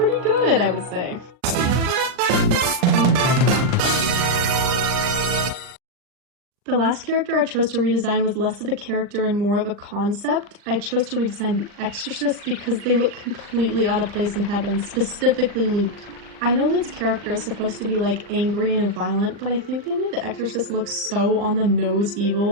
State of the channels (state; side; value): late; left; 39 ms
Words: good, I would say. The last character I chose to redesign was less of a character and more of a concept. I chose to redesign the Exorcist because they look completely out of place in heaven, specifically Luke. I know Luke's character is supposed to be like angry and violent, but I think they made the Exorcist look so on the nose